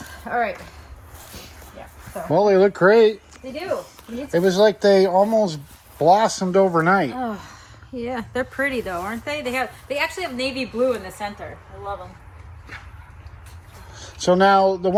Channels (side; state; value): both; identical; correlation 1.00